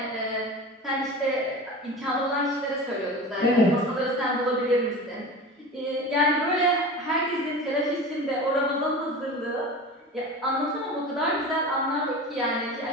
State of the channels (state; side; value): normal; both; correlation 0.32